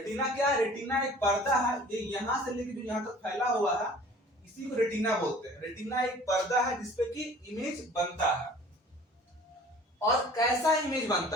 क्या है? रेटिना एक पर्दा है, ये यहां से लेकर जो यहां तक फैला हुआ है इसी को रेटिना बोलते हैं। रेटिना एक पर्दा है जिसपे कि इमेज बनता है। और कैसा इमेज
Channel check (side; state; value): both; normal; correlation 0.48